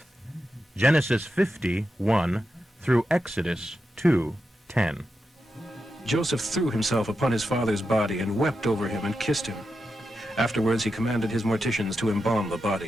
Genesis 50:1 through Exodus 2:10. Joseph threw himself upon his father's body and wept over him and kissed him. Afterwards he commanded his morticians to embalm the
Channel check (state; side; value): normal; both; correlation 0.88